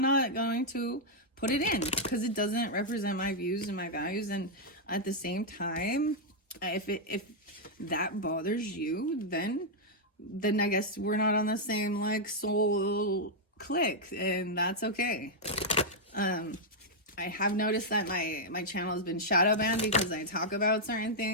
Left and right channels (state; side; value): normal; both; correlation -0.04